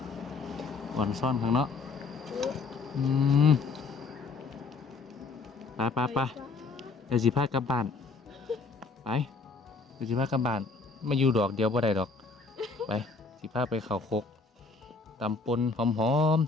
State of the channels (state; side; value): quieter; right; 4.2 dB